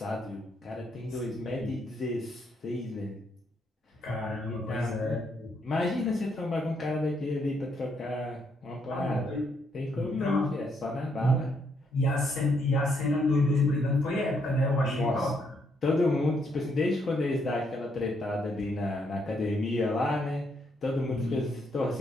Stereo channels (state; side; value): normal; both; correlation 0.74